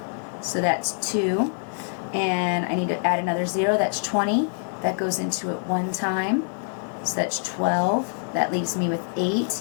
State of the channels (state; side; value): silent; right; digital silence